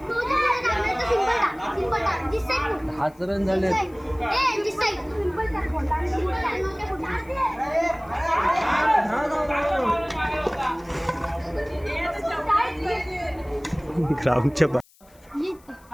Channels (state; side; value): noise; left; hiss, 29 dB below the sound